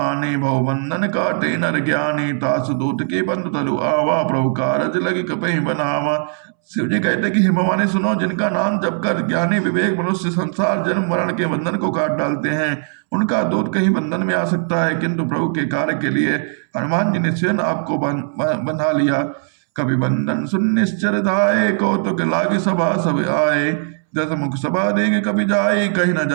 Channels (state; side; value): silent; left; 67 dB below the other